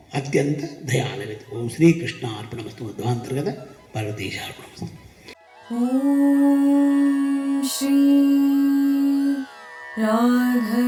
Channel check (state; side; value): identical; both; correlation 1.00